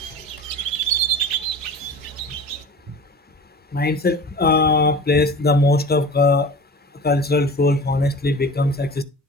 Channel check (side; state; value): both; normal; correlation 0.37